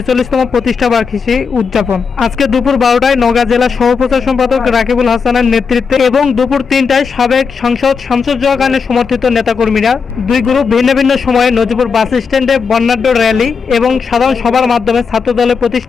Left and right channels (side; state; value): right; quieter; 5.6 dB